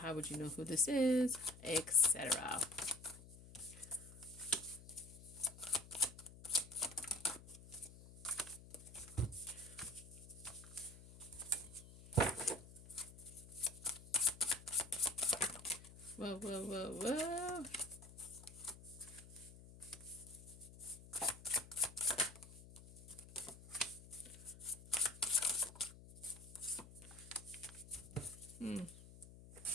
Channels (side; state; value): left; noise; hum, 17 dB below the sound